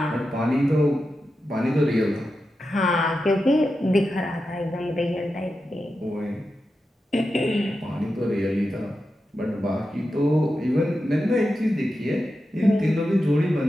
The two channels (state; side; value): normal; both; correlation 0.90